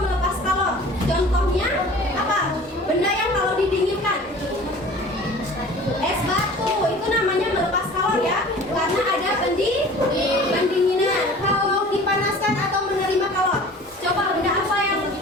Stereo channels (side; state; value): both; normal; correlation 0.44